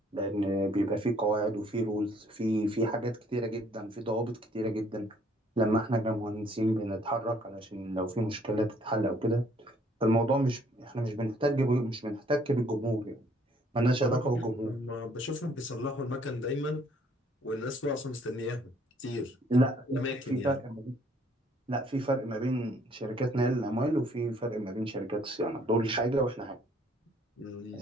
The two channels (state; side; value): normal; both; correlation 0.62